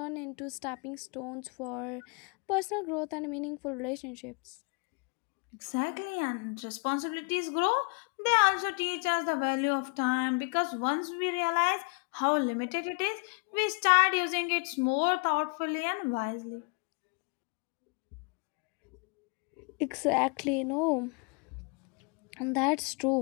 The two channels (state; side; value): quieter; right; 34.0 dB